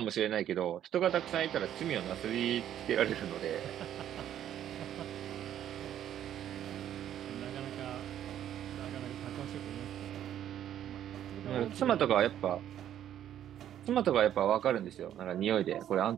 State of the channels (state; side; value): quieter; left; 10.9 dB